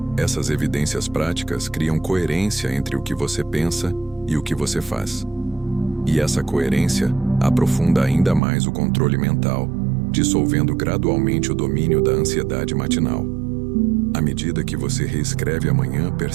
Essas evidências práticas criam coerência entre o que você pensa e o que você faz. E essa coerência aprofunda ainda mais o controle mental, dissolvendo gradualmente o domínio da ansiedade matinal. À medida que você reescreve amanhã,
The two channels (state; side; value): drops out; left; at 8.4 s